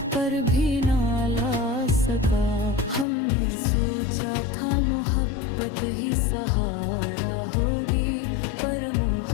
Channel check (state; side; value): drops out; right; at 3.1 s